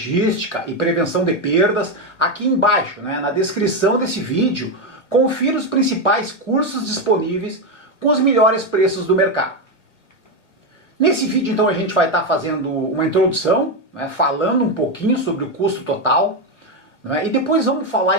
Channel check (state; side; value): late; right; 1.0 ms